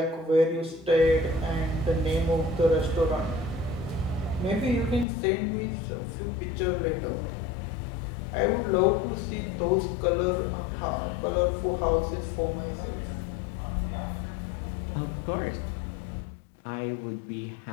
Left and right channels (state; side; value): drops out; right; at 5.1 s